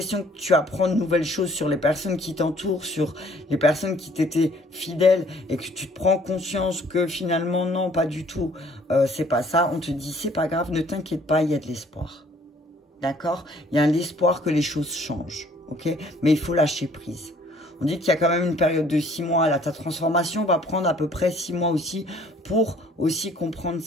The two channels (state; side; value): normal; both; correlation 0.58